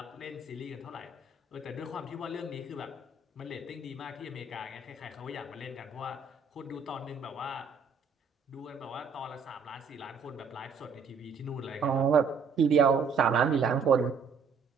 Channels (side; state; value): left; quieter; 5.1 dB